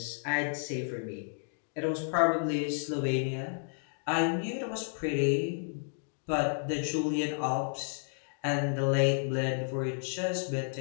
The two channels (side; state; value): right; silent; digital silence